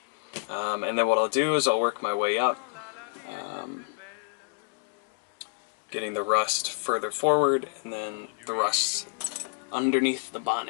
And then what I'll do is I'll work my way up, getting the rust further forward, and then the rust underneath the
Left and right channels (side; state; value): right; quieter; 36.2 dB